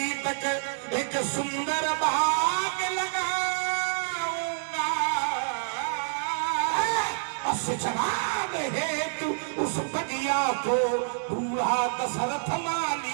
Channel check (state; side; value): silent; left; digital silence